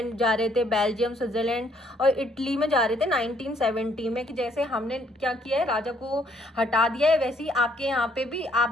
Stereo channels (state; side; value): normal; both; correlation 0.68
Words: जा रहे थे, बेल्जियम, स्विट्जरलैंड और इटली में जा रहे थे 1970 में, कि जैसे हमने क्या किया है, राजा को हटा दिया है, वैसे ही आपके यहाँ पे भी